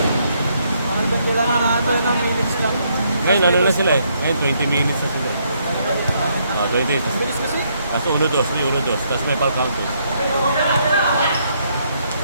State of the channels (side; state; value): both; inverted; correlation -0.73